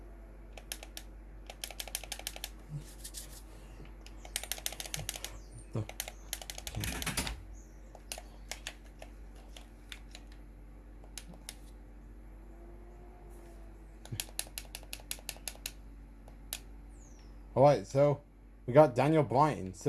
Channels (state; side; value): identical; both; correlation 1.00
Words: Alright, so we got Daniel Bryan,